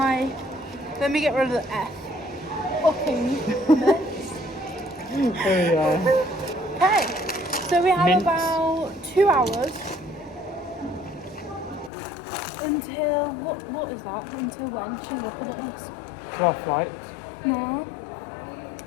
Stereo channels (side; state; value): right; drops out; at 11.9 s